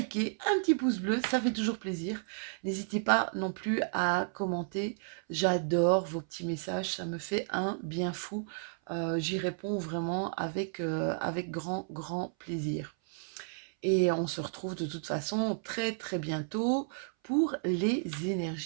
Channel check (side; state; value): left; silent; 56 dB below the other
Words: un petit pouce bleu, ça fait toujours plaisir. N'hésitez pas non plus à commenter, j'adore vos petits messages, ça me fait un bien fou. J'y réponds vraiment avec grand plaisir. Et on se retrouve de toute façon très très bientôt pour les